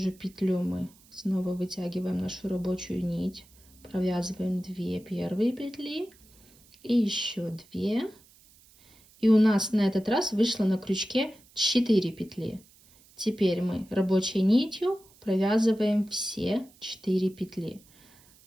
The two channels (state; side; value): noise; right; hiss, 28 dB below the sound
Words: петлю мы снова вытягиваем нашу рабочую нить, провязываем 2 первые петли и еще 2. И у нас на этот раз вышло на крючке 4 петли. Теперь мы рабочей нитью провязываем все 4 петли.